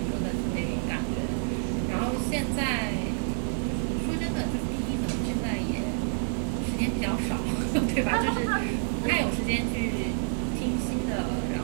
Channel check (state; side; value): silent; left; digital silence